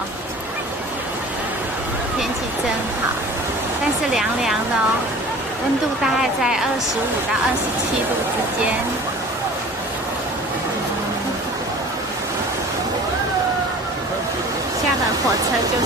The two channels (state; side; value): normal; both; correlation 0.43